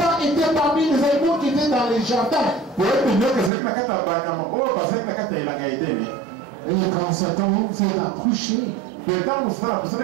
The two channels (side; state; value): left; drops out; at 3.5 s